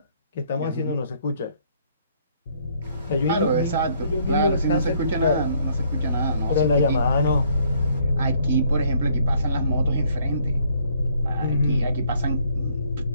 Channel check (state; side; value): inverted; both; correlation -0.65